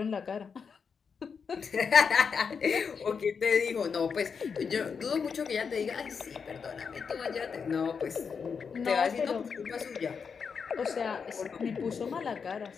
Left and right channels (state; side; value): quieter; right; 6.0 dB